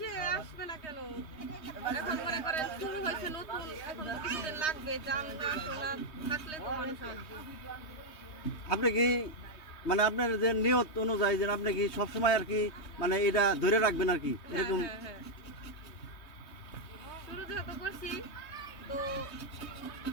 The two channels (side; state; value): right; late; 3.2 ms